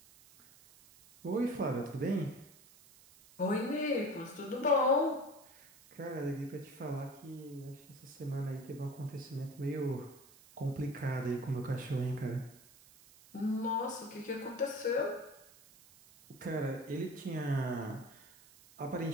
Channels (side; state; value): right; noise; hiss, 23 dB below the sound